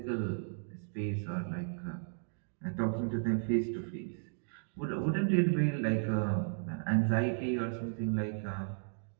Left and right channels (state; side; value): silent; left; digital silence